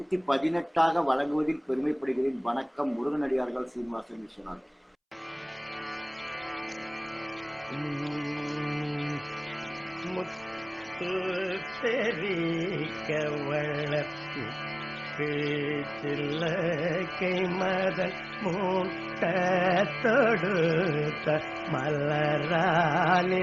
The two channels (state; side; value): identical; both; correlation 1.00